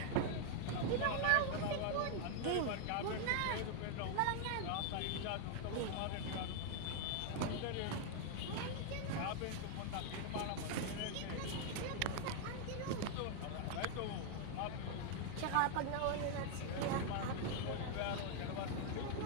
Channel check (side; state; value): both; different; correlation 0.00